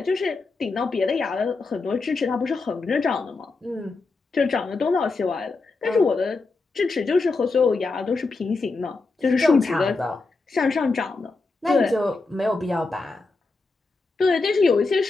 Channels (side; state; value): right; quieter; 3.8 dB